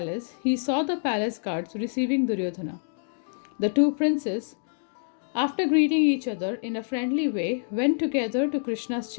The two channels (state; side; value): silent; right; digital silence